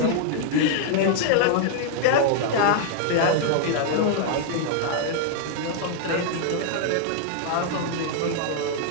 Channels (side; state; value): both; different; correlation -0.01